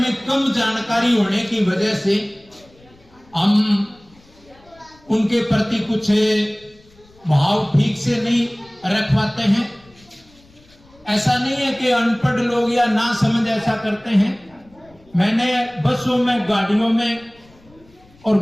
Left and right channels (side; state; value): left; noise; rumble, 29 dB below the sound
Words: कम जानकारी होने की वजह से हम उनके प्रति कुछ भाव ठीक से नहीं रख पाते हैं। ऐसा नहीं है कि अनपढ़ लोग या ना समझ ऐसा करते हैं। मैंने बसों में, गाड़ियों में और